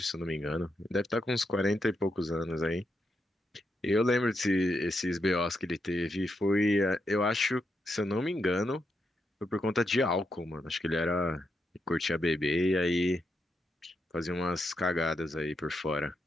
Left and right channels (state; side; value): normal; both; correlation 0.83